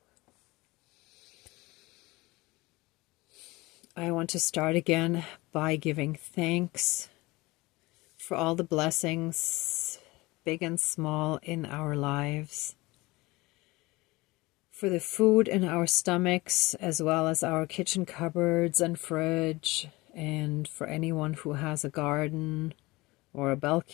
I want to start again by giving thanks for all the blessings, big and small, in our lives, for the food in our stomachs, as well as our kitchen cupboards and fridge, and for anyone who has a garden or a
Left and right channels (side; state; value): right; quieter; 21.8 dB